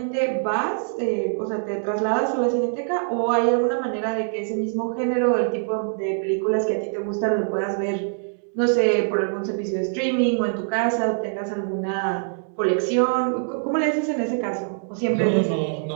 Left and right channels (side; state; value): left; silent; digital silence